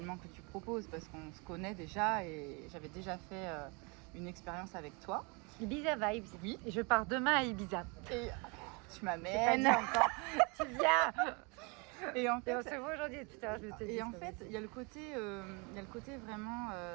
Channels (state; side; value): quieter; left; 30.7 dB